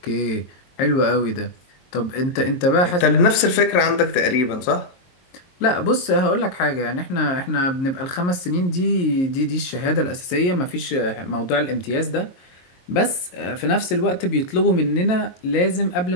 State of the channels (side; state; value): right; late; 22 ms